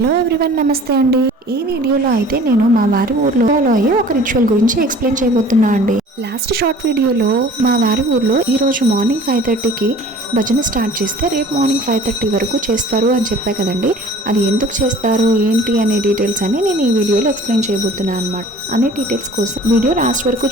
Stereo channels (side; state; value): both; normal; correlation 0.47